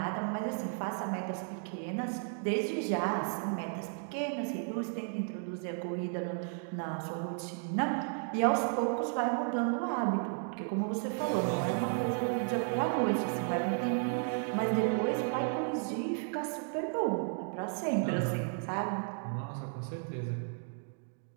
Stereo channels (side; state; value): left; silent; 55 dB below the other